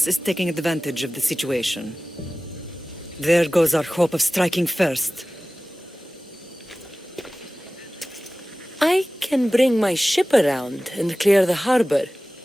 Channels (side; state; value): both; normal; correlation 0.97